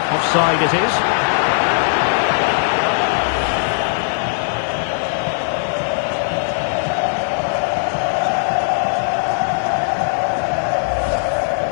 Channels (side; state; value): right; silent; 67 dB below the other